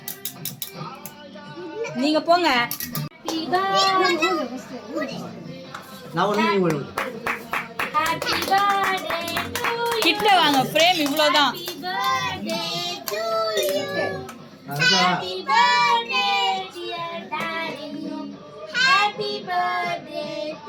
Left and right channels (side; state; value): both; identical; correlation 1.00